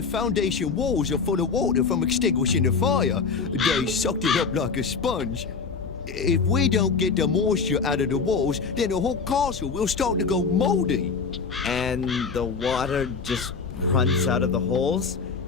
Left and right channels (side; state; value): right; quieter; 5.2 dB